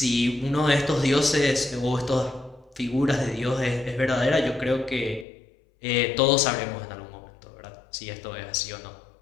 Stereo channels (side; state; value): right; drops out; at 5.2 s